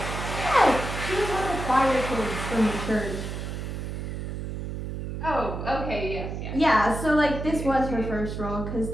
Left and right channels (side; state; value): right; noise; hum, 5 dB below the sound